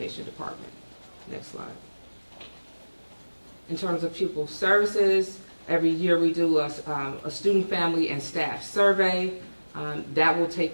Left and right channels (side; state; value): both; inverted; correlation -1.00